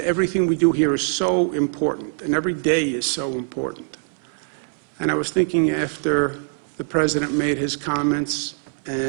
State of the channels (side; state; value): left; silent; digital silence